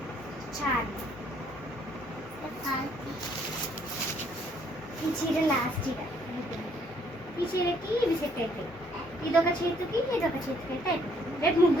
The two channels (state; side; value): normal; both; correlation 0.65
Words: చాలు. ఈ చీర లాస్ట్ చీర. ఈ చీరకి ఇవి సెట్ అయిపోయి, ఇదొక చేతికి ఇదొక చేతికి అయితే అయిపోతుంది. రేపు